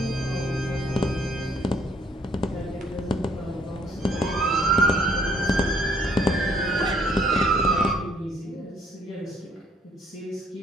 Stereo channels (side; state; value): both; normal; correlation 0.64